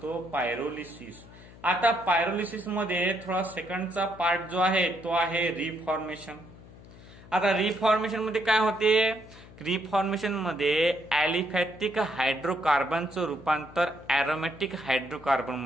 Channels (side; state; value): left; noise; hum, 20 dB below the sound